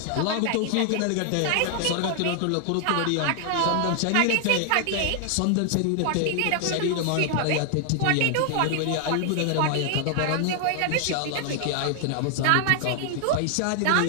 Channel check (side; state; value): both; different; correlation 0.00